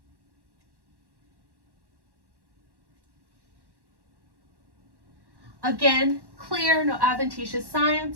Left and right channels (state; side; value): late; left; 1.1 ms